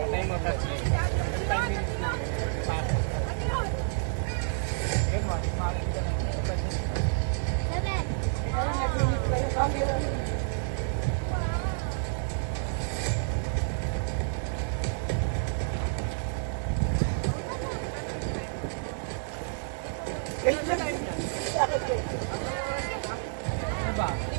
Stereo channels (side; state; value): left; silent; digital silence